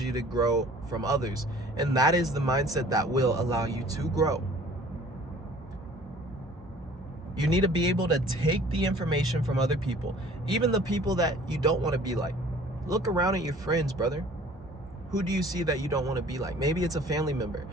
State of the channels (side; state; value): both; normal; correlation 0.51